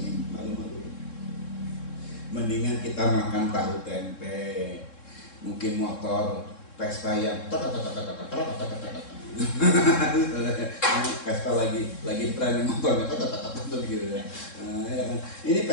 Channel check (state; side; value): late; right; 3.7 ms